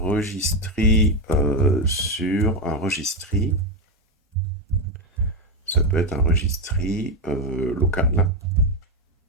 sur un registry. Ça peut être un registry local.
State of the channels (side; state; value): both; normal; correlation 0.09